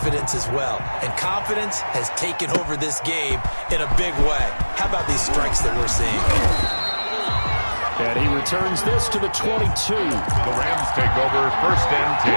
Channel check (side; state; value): both; inverted; correlation -1.00